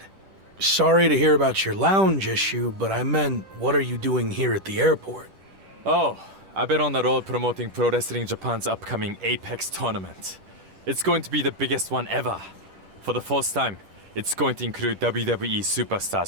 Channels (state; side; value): late; left; 10 ms